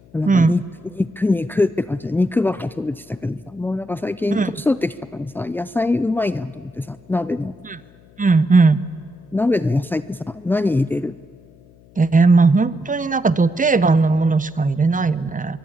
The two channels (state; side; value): noise; left; hum, 27 dB below the sound